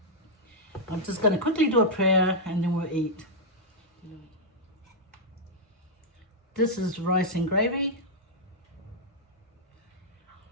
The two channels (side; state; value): both; normal; correlation -0.05